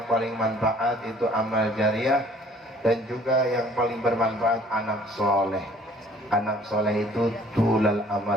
paling manfaat itu amal jariah, dan juga yang paling bermanfaat anak soleh. Anak soleh itu tulal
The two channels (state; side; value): normal; both; correlation 0.55